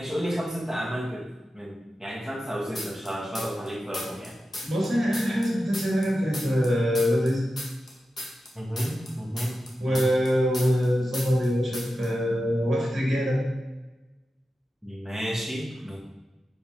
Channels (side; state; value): both; normal; correlation 0.91